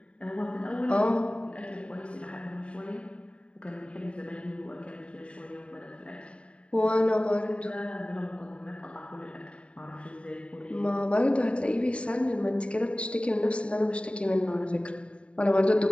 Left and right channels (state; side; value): late; right; 0.060 ms